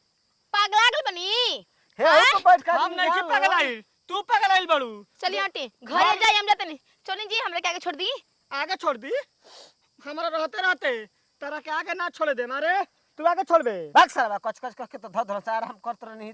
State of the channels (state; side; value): identical; both; correlation 1.00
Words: पागला गल बनी। हे हो तो बैठ का हम नहीं कि पगलाइल, तू पगलाइल बड़ू। चलिए आंटी घरे जाए हम जाते नहीं। चलिए जी हमरे के आगे छोड़ दी। आगे छोड़ दी हमारा रहते रहते तेरा के आगे ना छोड़ दे मारे। तू आगे छोड़ बे। भाग साला कच कच कच के तो धर से आराम करत नहीं